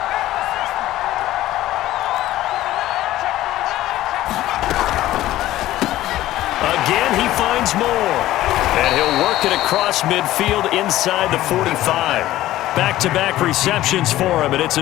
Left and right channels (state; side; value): quieter; right; 15.0 dB